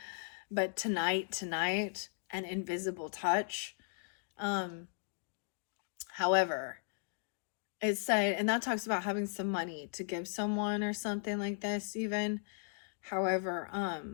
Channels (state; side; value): silent; right; digital silence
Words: but tonight and Invisible Touch. However, it said, and that talks about having some money to give someone or something like this even. However,